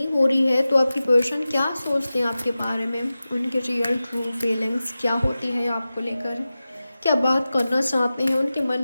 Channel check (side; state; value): both; inverted; correlation -0.95